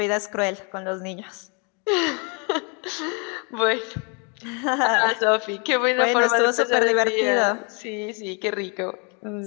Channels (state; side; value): quieter; right; 34.8 dB